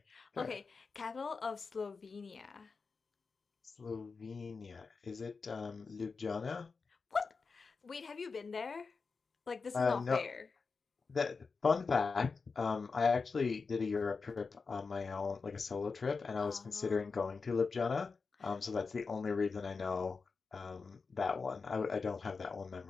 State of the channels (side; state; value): right; quieter; 4.7 dB